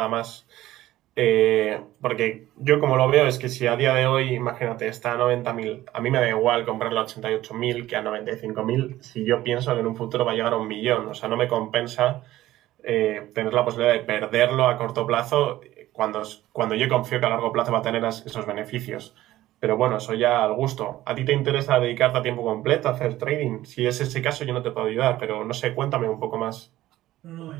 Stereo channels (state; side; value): quieter; left; 15.2 dB